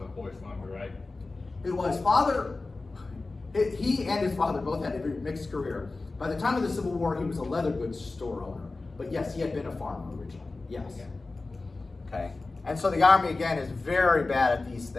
horse farmer, right? His father, he and his father both had a very mixed career. By the time of the Civil War, he was a leather goods store owner. But yes, he had been a farmer originally. Yes. Yeah. Okay. And so the Army, again, is very bad at these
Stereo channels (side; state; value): right; quieter; 3.5 dB